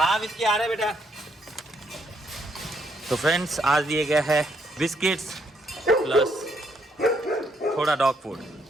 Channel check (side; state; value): both; normal; correlation 0.73